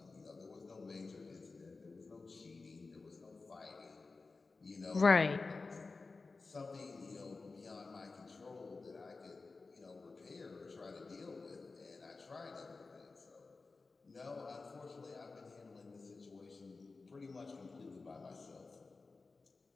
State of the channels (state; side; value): quieter; right; 4.0 dB